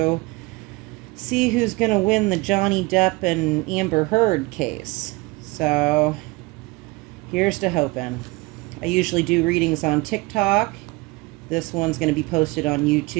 see who's going to win the Johnny Depp and Amber Heard case. So, here's to hoping. I usually do readings on TikTok. This one's going to be posted on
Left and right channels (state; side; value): quieter; left; 24.0 dB